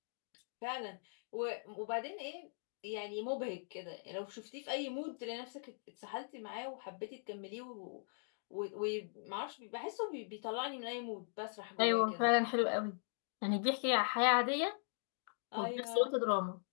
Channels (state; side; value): silent; right; digital silence